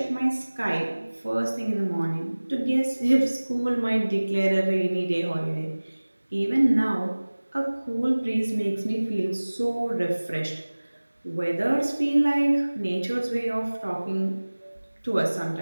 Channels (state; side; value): inverted; both; correlation -1.00